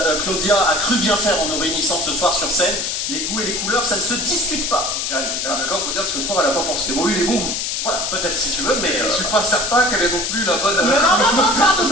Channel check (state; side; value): noise; left; hiss, 1 dB below the sound